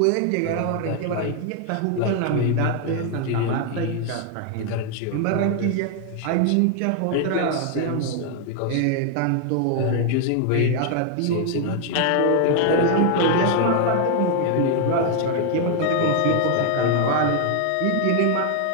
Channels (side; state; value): both; different; correlation 0.00